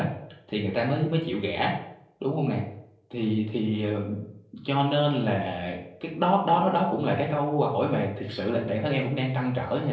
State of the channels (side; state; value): both; identical; correlation 1.00